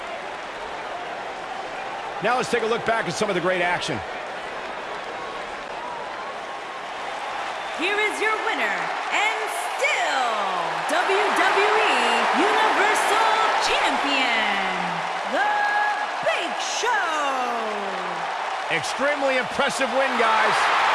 Now let's take a look back at some of the great action. Here is your winner, and still WWE Universal Champion, The Big Show. Extremely impressive win, guys.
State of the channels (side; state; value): both; identical; correlation 1.00